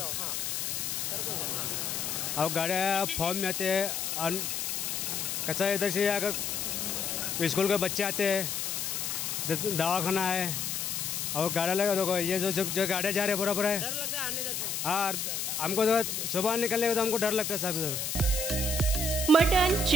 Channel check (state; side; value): noise; left; hiss, 2 dB below the sound